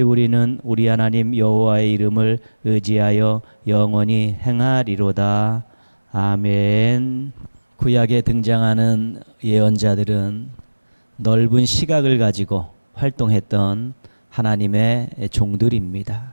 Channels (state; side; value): inverted; both; correlation -1.00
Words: 우리는 우리 하나님 여호와의 이름을 의지하여 영원히 행하리로다. 아멘. 구약에 등장하는 예언자들은 넓은 시각을 가지고 활동했던 하나님의 종들입니다.